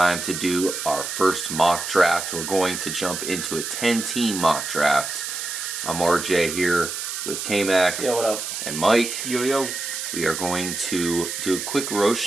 to do our first mock draft. We're going to jump into a 10-team mock draft. I'm RJ here with K-Mac. Yo, what up? And Mike. Yo. We are going to do a quick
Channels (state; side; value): noise; right; hiss, 5 dB below the sound